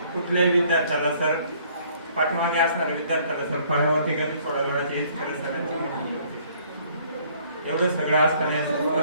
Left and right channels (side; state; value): both; inverted; correlation -0.61